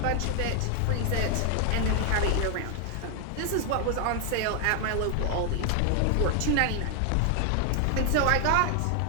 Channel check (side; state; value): both; different; correlation 0.00